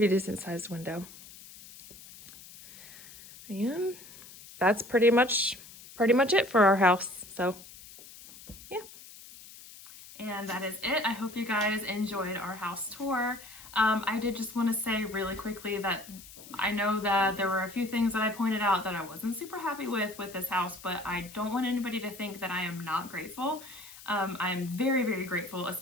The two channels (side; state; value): left; noise; hiss, 18 dB below the sound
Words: decent sized window. And that's pretty much it for our house. So yeah. And that is it. I hope you guys enjoyed our house tour. I did just want to say really quickly that I know that there were a few things that I pointed out that I wasn't super happy with this house, but I don't want anybody to think that I am not grateful. I'm very grateful,